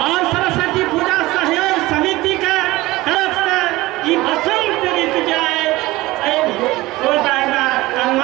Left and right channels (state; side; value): quieter; left; 19.1 dB